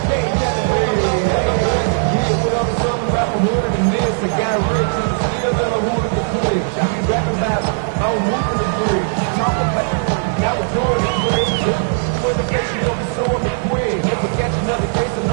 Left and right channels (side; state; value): left; silent; digital silence